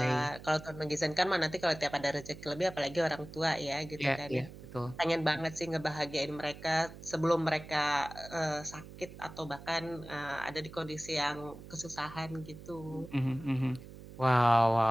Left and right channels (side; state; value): right; noise; hum, 15 dB below the sound